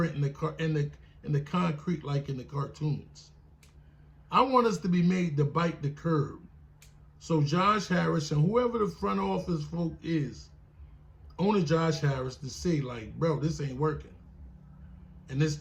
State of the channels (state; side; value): identical; both; correlation 1.00